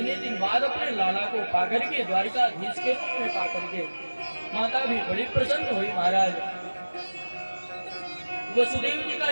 दिन बाद अपने लाला को पाकर के, द्वारिकाधीश के रूप में पाकर के माता भी बड़ी प्रसन्न हुई महाराज। वसुदेव जी का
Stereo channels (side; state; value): both; inverted; correlation -1.00